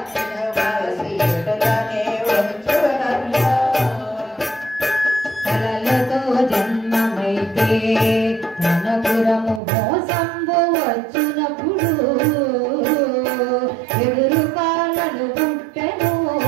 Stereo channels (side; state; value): left; drops out; at 9.6 s